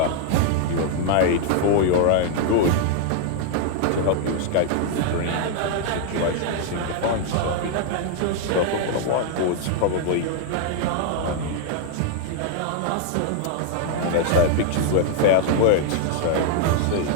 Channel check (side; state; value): both; different; correlation 0.00